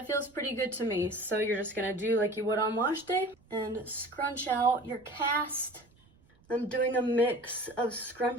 feels pretty good to me. So you're just gonna do like you would on wash day and scrunch out your cast. I'm doing a mix of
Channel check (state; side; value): noise; right; rumble, 30 dB below the sound